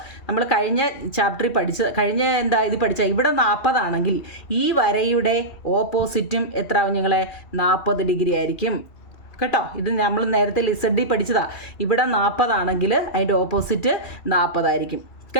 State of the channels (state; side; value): late; right; 2.4 ms